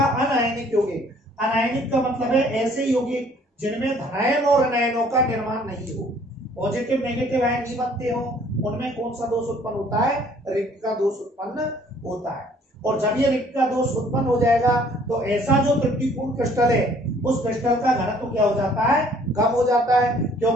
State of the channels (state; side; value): normal; both; correlation 0.58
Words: अनआयनिक यौगिक। अनआयनिक का मतलब है ऐसे यौगिक जिनमें धनायन और ऋणायनों का निर्माण नहीं हो, पॉजिटिव नेगेटिव आयन नहीं बनते हो, उनमें कौन सा दोष उत्पन्न होता है, रिक्त का दोष उत्पन्न होता है। और जब ये रिक्त का दोष उत्पन्न हो जाएगा तो ऐसा जो त्रुटिपूर्ण क्रिस्टल है उस क्रिस्टल का घनत्व क्या हो जाता है, कम हो जाता है।